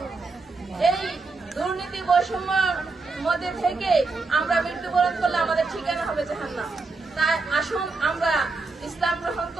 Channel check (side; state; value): left; quieter; 3.9 dB